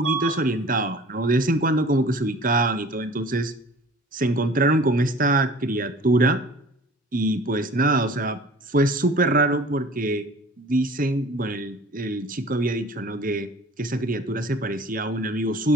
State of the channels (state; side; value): normal; both; correlation 0.46